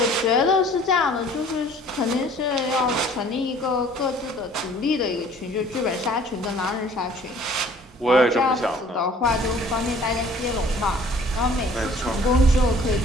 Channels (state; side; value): normal; both; correlation 0.53